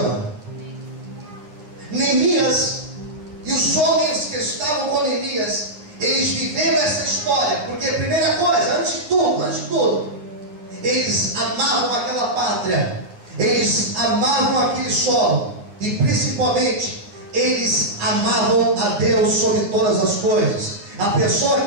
Neemias e os homens que estavam com Neemias, eles viveram essa história, porque primeira coisa, antes de tudo, eles amavam aquela pátria, eles amavam aquele solo, e principalmente, eles amavam a Deus sobre todas as coisas. A pessoa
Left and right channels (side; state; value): left; late; 9.7 ms